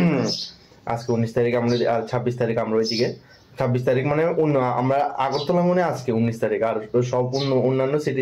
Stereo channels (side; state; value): both; identical; correlation 1.00